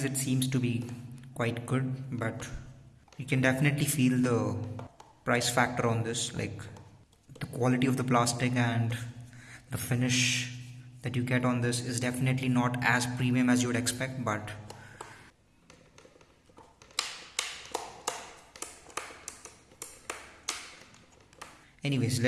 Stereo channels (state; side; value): identical; both; correlation 1.00